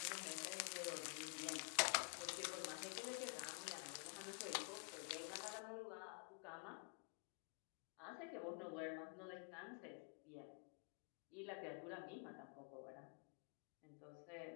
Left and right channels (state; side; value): quieter; right; 39.6 dB